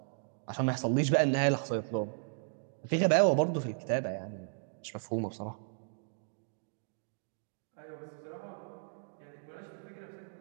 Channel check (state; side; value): silent; left; digital silence